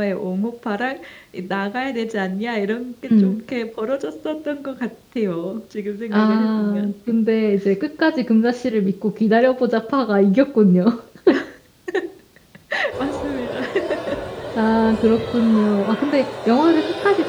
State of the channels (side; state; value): both; identical; correlation 1.00